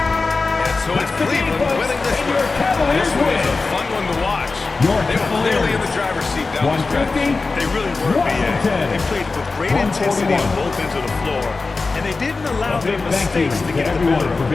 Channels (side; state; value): right; quieter; 3.9 dB